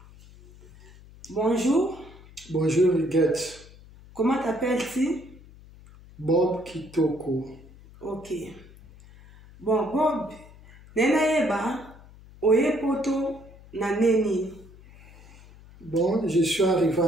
Bonjour. Bonjour, Huguette. Comment t'appelles-tu? Bob Kitoko. Ok. Bon, Bob, nena yeba, oye poto na neni. Bon, je suis arrivé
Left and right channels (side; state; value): left; noise; hum, 22 dB below the sound